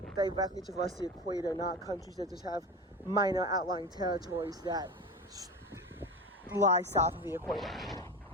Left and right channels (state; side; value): normal; both; correlation 0.27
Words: directly traverse the equator, not countries that just have minor outlying territories that lie south of the equator.